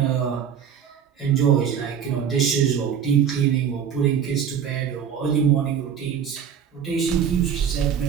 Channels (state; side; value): quieter; left; 8.0 dB